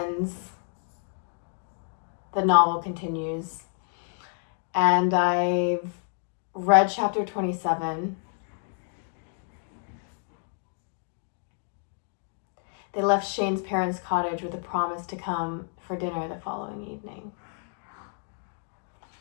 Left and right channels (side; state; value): right; silent; 58 dB below the other